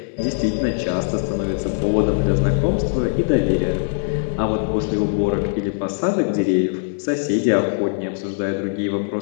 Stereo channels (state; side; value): silent; right; 59 dB below the other